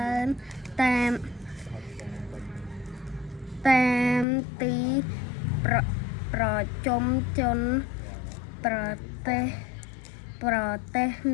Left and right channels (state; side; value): drops out; right; at 4.2 s